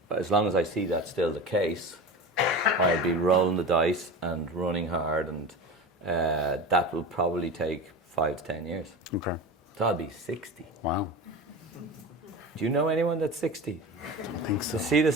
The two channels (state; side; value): normal; both; correlation 0.30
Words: as long as I see that's still the case, I'll be rolling the dice and running hard, and that will probably take 5 to 10 years. Okay. So I'll be 60. Wow. Do you know anyone that's 60? I don't think so. To see the